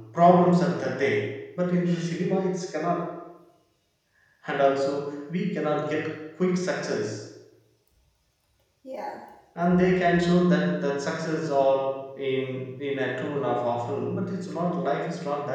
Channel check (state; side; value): identical; both; correlation 1.00